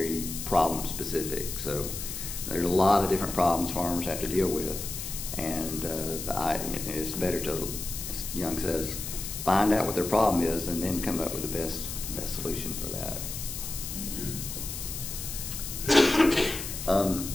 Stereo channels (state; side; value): noise; left; hiss, 7 dB below the sound